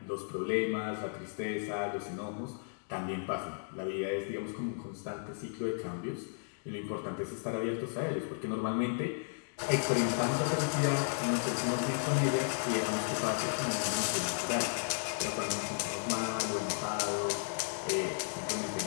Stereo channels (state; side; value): silent; right; digital silence